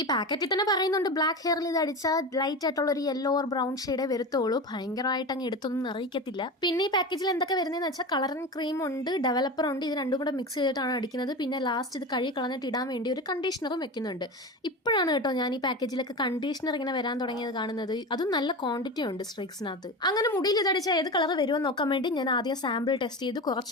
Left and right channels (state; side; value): normal; both; correlation 0.26